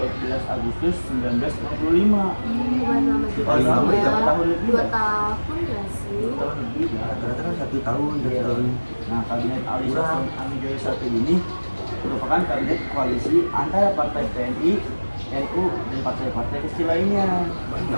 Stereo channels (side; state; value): both; inverted; correlation -1.00